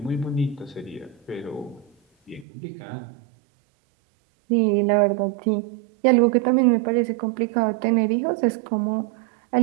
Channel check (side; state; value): left; drops out; at 2.5 s